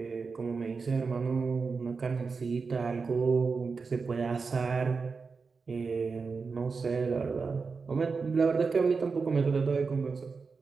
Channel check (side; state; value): left; quieter; 4.8 dB